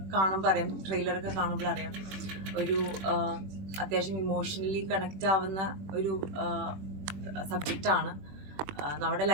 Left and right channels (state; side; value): late; left; 21 ms